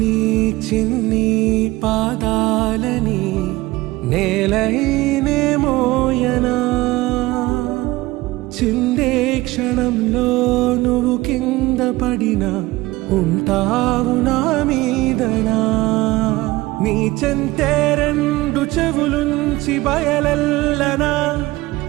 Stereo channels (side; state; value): left; quieter; 19.5 dB